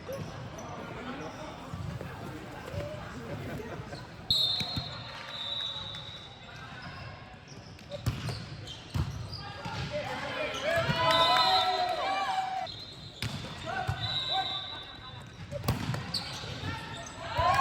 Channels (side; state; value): both; identical; correlation 1.00